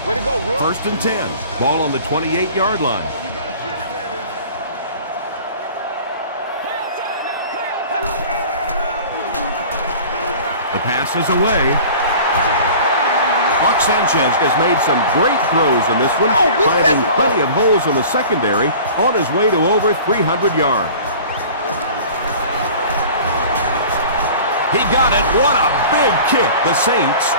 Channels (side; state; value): both; inverted; correlation -0.42